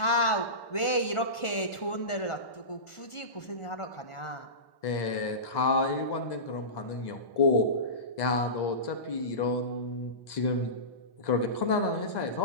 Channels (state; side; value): late; right; 1.4 ms